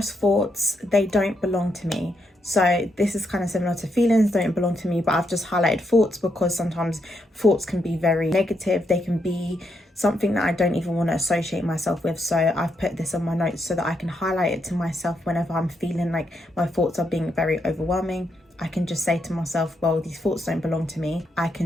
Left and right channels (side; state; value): both; normal; correlation 0.80